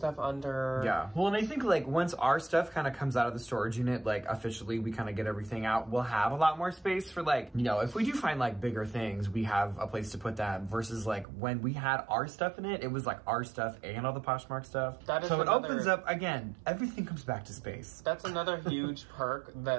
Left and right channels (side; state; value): left; drops out; at 11.2 s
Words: under. Yeah. Well, and I think like once our stuff kind of comes out of the storage unit, like officially we kind of get everything out, we'll have a lot more space for like, you know, if we do find like bigger things, we have a place to put that versus like when we had our stuff in it, it was like our stuff and all the Poshmark stuff. That is so it another- opens up, again, everything comes back to space. That's another huge perk